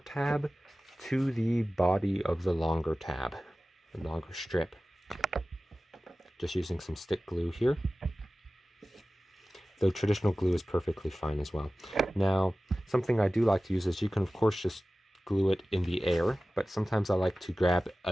tab to the body of the longer tab, the longer strip. Just using some stick glue here. Though traditional glue is perfectly fine as well. Now, something I do like to use is you can of course just glue it in the air, but sometimes I like to grab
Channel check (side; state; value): both; normal; correlation 0.96